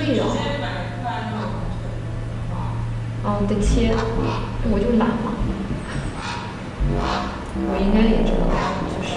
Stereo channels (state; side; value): identical; both; correlation 1.00